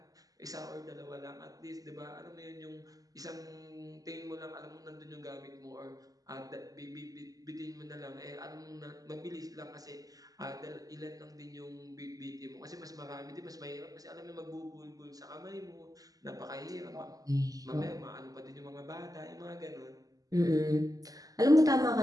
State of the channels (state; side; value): late; left; 0.17 ms